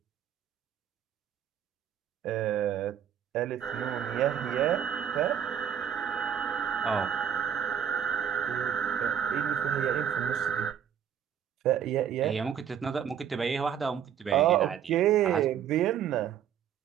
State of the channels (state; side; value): quieter; left; 8.9 dB